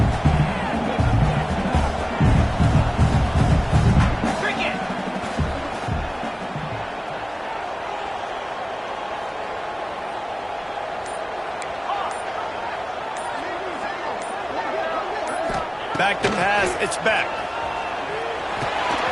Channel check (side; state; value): both; identical; correlation 1.00